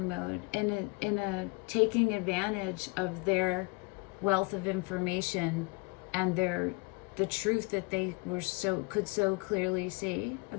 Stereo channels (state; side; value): quieter; right; 28.4 dB